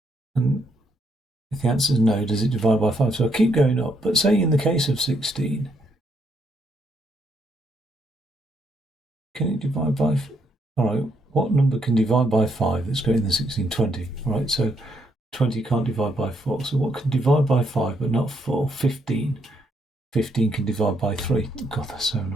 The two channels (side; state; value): both; normal; correlation 0.75